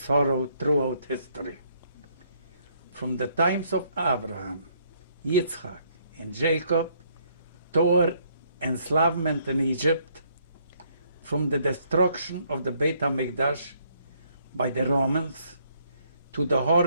throughout history. From the times of Abraham, Yitzchak, and Jacob, toward enslavement in Egypt, from the destruction of the Beit HaMikdash by the Romans, to the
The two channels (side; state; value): both; inverted; correlation -0.68